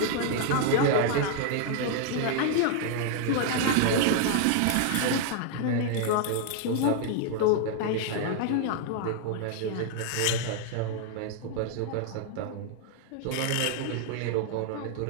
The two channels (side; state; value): both; different; correlation 0.00